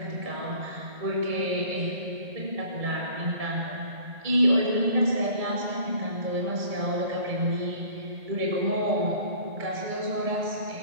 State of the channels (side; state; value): left; late; 1.8 ms